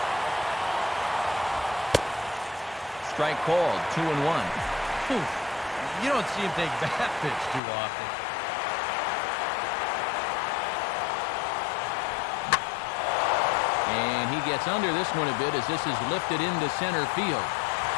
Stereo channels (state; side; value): drops out; right; at 7.6 s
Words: Strike called, 2-1. You don't see him take that pitch too often. And he gets under this one a bit as this is lifted into center field.